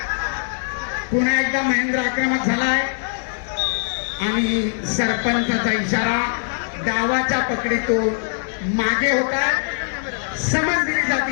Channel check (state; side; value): silent; right; 65 dB below the other